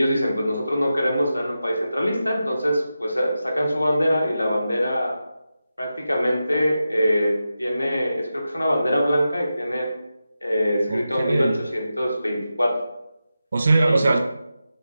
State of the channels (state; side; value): inverted; both; correlation -0.91